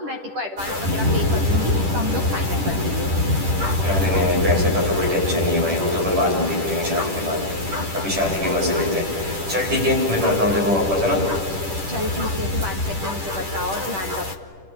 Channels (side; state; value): left; late; 10 ms